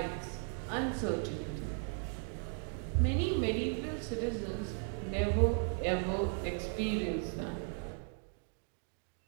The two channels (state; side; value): silent; left; 53 dB below the other